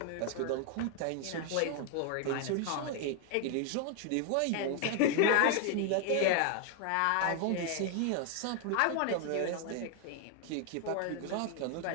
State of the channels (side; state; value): both; different; correlation 0.00